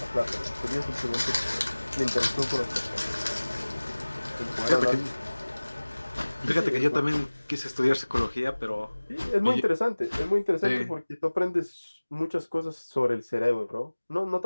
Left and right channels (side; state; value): both; inverted; correlation -1.00